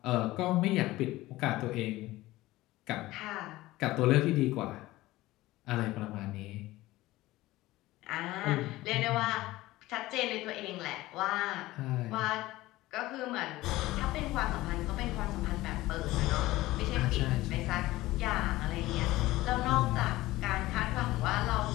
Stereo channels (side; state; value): right; quieter; 17.8 dB